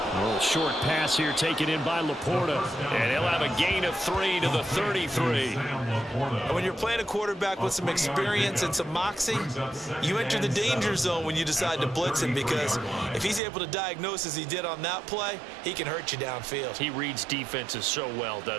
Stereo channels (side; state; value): left; drops out; at 13.4 s